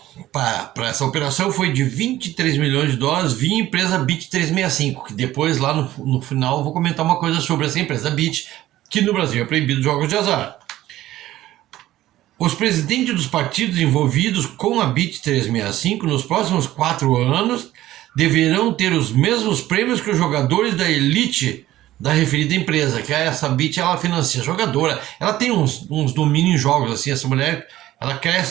para essa operação foi de $23 milhões via empresa Bit365, que depois lá no final eu vou comentar uma coisa sobre essa empresa Bit, que no Brasil é proibido jogos de azar. Os presidentes dos partidos envolvidos com a Bit365 nos próximos 4 anos deverão ter os mesmos prêmios que os jogadores da elite da referida empresa, que essa Bit, ela financia jogadora, ela tem uns domínios em jogos, assim, essa mulher, ela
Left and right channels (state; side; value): quieter; left; 14.8 dB